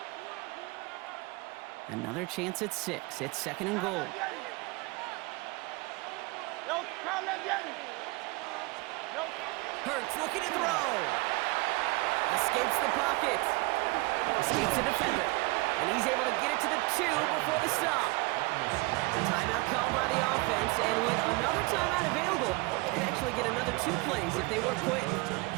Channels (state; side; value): quieter; left; 25.1 dB